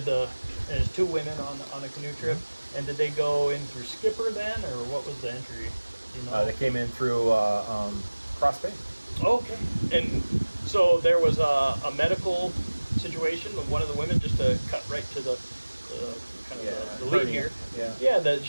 there's two women on a canoe trip, and did they go in through Skipper then, or what was the entry? You know? They came in through Cross Bay. Okay, and so there was a medical situation with one of the women, just to cut right to the the lead here. Yeah, that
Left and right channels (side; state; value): both; inverted; correlation -1.00